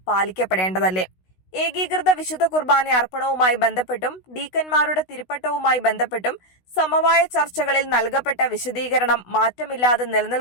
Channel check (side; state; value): right; late; 16 ms